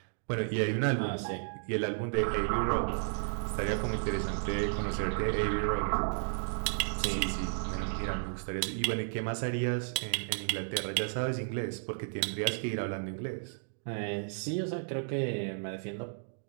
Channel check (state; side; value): silent; left; digital silence